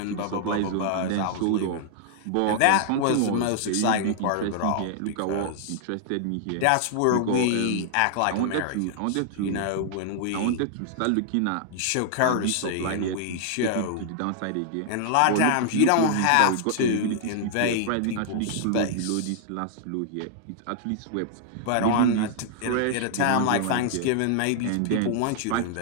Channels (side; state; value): both; different; correlation -0.01